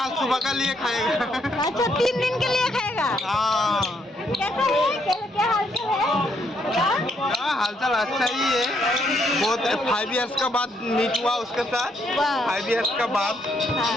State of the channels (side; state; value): both; normal; correlation 0.73